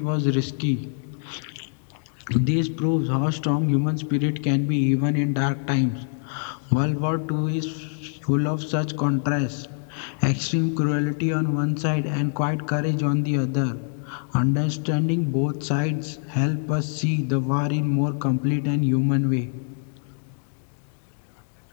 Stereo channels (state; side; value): silent; right; 62 dB below the other